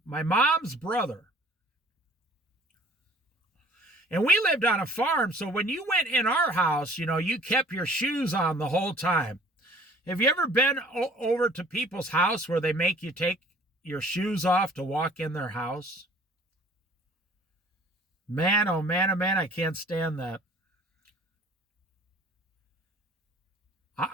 mom's brother. And we lived on a farm, so when you went in our house, you kept your shoes on the whole time. Have you ever been over to people's house where they make you take your shoes off to walk in their house? Man, oh man, I can't stand that.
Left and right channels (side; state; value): both; normal; correlation 0.52